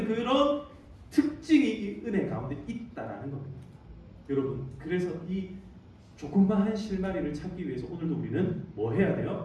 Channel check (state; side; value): identical; both; correlation 1.00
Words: 그런 특징이 이 은혜 가운데 있다라는 겁니다. 여러분, 그래서 이 조그마한 실마리를 찾기 위해서 오늘도 우리는 뭐 해야